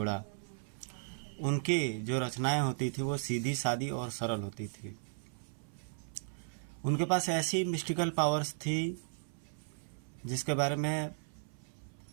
उनकी जो रचनाएं होती थी वो सीधी सादी और सरल होती थी। उनके पास ऐसी मिस्टिकल पावर्स थी जिसके बारे में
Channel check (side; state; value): left; silent; 54 dB below the other